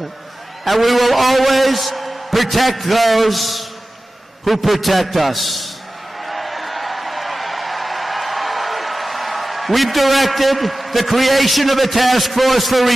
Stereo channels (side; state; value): both; normal; correlation 0.95